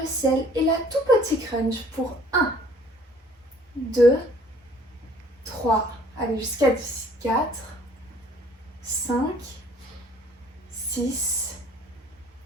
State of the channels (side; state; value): both; normal; correlation 0.56